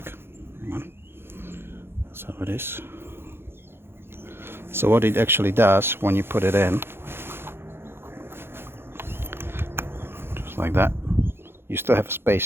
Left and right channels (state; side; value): late; left; 0.11 ms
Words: That's how it is. So what it actually does when you put it in, just like that, you still have a